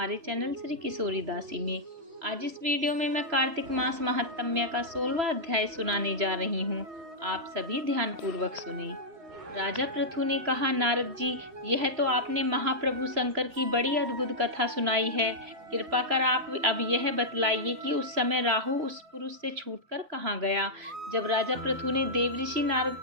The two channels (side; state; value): left; late; 3.0 ms